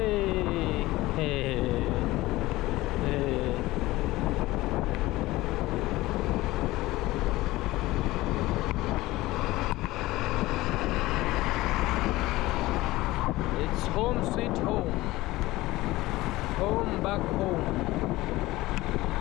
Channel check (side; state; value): right; quieter; 18.5 dB